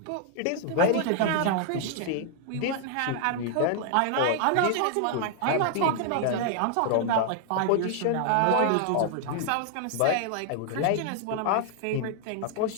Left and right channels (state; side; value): different; both; correlation 0.00